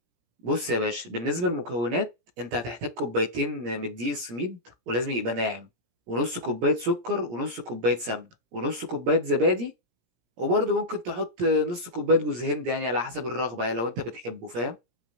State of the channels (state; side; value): late; left; 17 ms